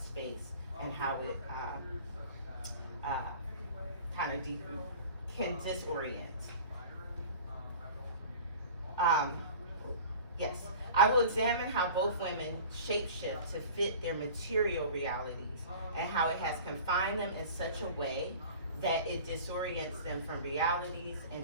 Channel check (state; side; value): inverted; both; correlation -0.41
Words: and how it can disorient. Yes, I will examine how both women shapeshift to fit their material realities and how it has confined them in such a way that it disorients them from realities